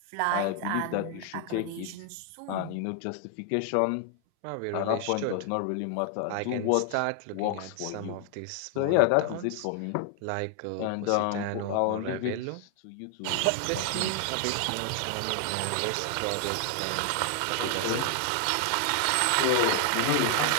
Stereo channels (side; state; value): both; different; correlation 0.00